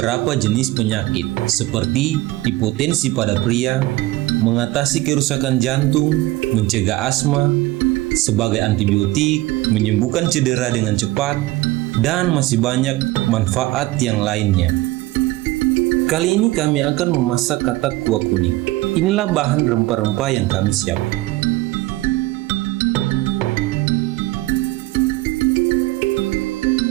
jenis penyakit seperti hipotensi pada pria, mengatasi kerusakan jantung, mencegah asma, sebagai antibiotik, menyembuhkan cedera dengan cepat, dan masih banyak manfaat yang lainnya. Kali ini kami akan memasak katak kuah kuning. Inilah bahan rempah-rempah yang kami siapkan.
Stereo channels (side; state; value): left; quieter; 18.5 dB